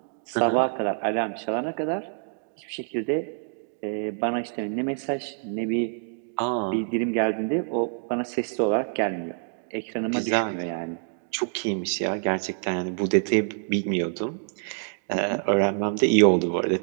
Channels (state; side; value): silent; left; digital silence